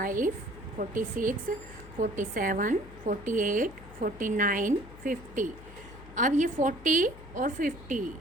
46 47 48 49 50। अब ये 40 और 50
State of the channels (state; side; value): noise; left; hum, 17 dB below the sound